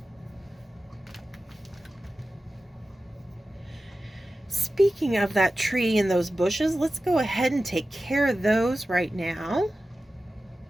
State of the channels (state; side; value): normal; both; correlation 0.94